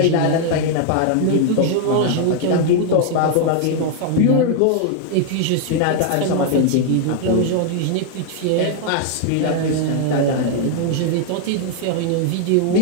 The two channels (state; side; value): different; both; correlation 0.00